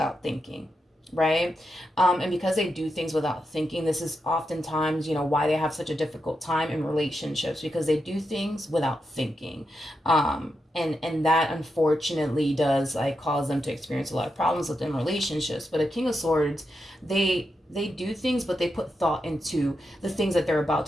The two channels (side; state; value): both; normal; correlation 0.86